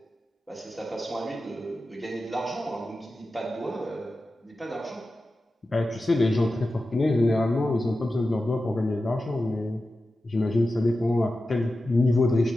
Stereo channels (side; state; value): both; normal; correlation 0.93